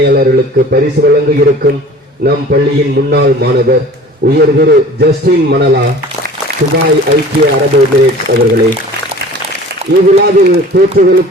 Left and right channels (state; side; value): normal; both; correlation 0.44